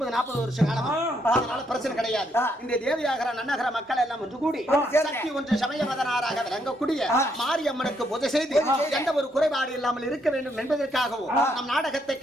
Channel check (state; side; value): normal; both; correlation 0.74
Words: வருஷம் காலமா, அதனால பிரச்சனை கிடையாது. இந்த தேவியாகர நன்னகர மக்கள் எல்லாம் ஒன்று கூடி சக்தி ஒன்று சமயவதனாராக விளங்கக்கூடிய மாரியம்மனுக்கு பூஜை செய்து எந்த ஒரு குறைபாடு இல்லாமல் இருக்க வேண்டும் என்பதற்காகவும் நம் நாடகத்தை